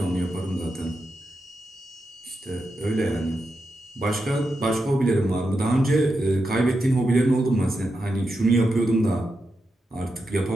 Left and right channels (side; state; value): both; normal; correlation 0.87